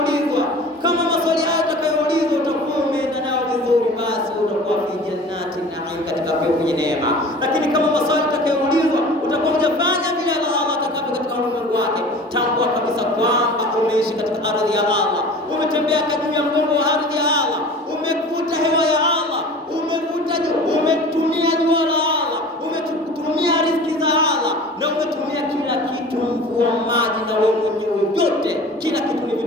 kama maswali hayo utakayoulizwa utakuwa umeenda nao vizuri, basi utakuwa fi jannati na'im, katika pepo yenye neema. Lakini kama maswali utakayoulizwa utakuwa hujafanya vile Allah atakavyo katika ulimwengu wake, tambua kabisa kwamba umeishi katika ardhi ya Allah, umetembea juu ya mgongo wa ardhi ya Allah, umevuta hewa ya Allah, umetumia jua la Allah, umetumia riziki za Allah, na umetumia kila kitu, mvua, maji na wewe mwenyewe, yote kila kitu ni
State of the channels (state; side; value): normal; both; correlation 0.41